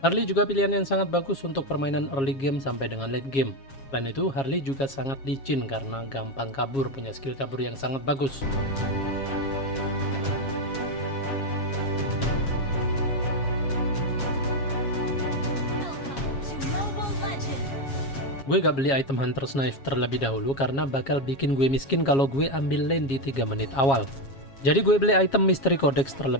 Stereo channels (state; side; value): late; right; 7.3 ms